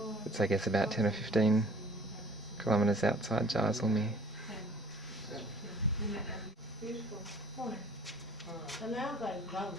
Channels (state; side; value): normal; both; correlation 0.52